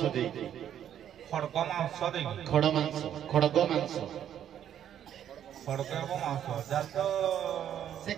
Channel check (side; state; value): left; quieter; 10.1 dB